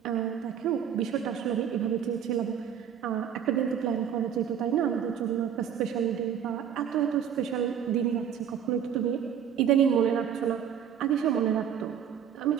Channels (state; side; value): quieter; left; 8.7 dB